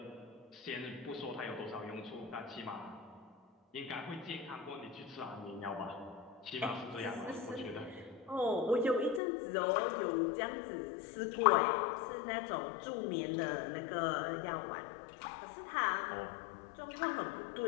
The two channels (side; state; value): right; drops out; at 9.2 s